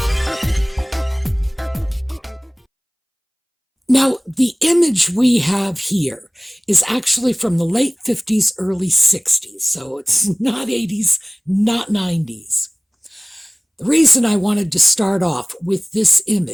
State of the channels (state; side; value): identical; both; correlation 1.00